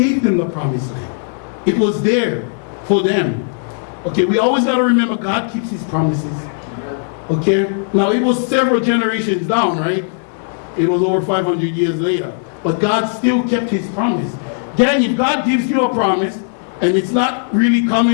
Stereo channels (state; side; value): silent; right; digital silence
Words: them the promised land. It was there for them. Okay, we always got to remember God keeps his promises. Okay, now it was several generations down, right? It was over 500 years later. But God still kept his promise. Then if God gives you a promise and it's not really